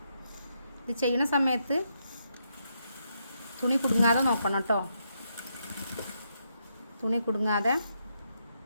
ഇത് ചെയ്യുന്ന സമയത്ത് തുണി കുടുങ്ങാതെ നോക്കണം കേട്ടോ. തുണി കുടുങ്ങാതെ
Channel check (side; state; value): both; inverted; correlation -0.80